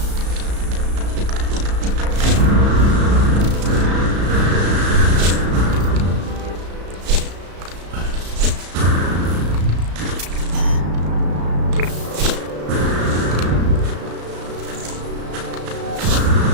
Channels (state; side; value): late; left; 34 ms